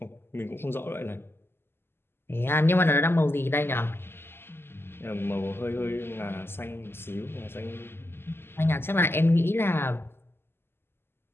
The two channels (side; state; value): right; late; 0.11 ms